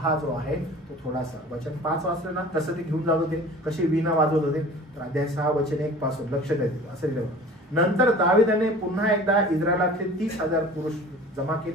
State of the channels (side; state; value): both; normal; correlation 0.43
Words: जो आहे तो थोडासा, वचन 5 वाचलं ना तसं ते घेऊन जात होते, कशी वीणा वाजवत होते. तर अध्याय 6 वचन 1 पासून लक्ष द्यायचं असं लिहिलं. नंतर दाविदाने पुन्हा एकदा इस्रायलातले 30,000 पुरुष जमा